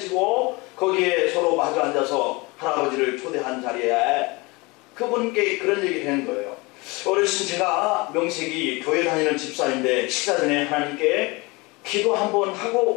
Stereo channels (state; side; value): quieter; right; 25.1 dB